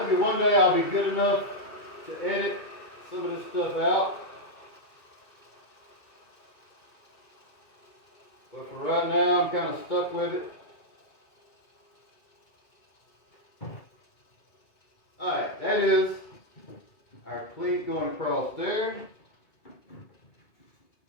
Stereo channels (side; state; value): right; late; 2.2 ms